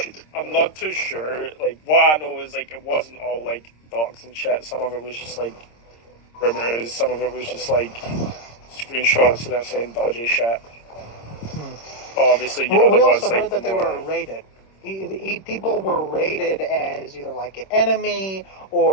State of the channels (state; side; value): late; right; 26 ms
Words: not too sure. Like, what I know is, like, it wasn't all, like, docs and shit. Some of it was just, like, rumors. Some of it was just, like, screenshots of them saying dodgy shit. But obviously, we also heard that they were rated. People were rated as either like an enemy